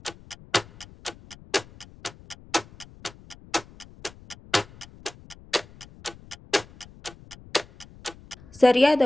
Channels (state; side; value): noise; left; rumble, 22 dB below the sound